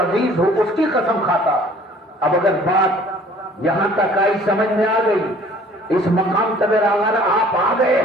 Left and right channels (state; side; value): normal; both; correlation 0.53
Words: ہو, اس کی قسم کھاتا. اب اگر بات یہاں تک آئی, سمجھ میں آ گئی, اس مقام تک اگر آپ آ گئے